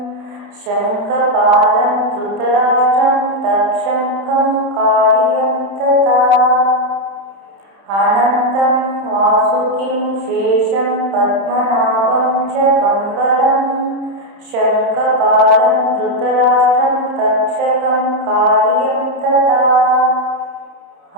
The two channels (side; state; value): left; late; 31 ms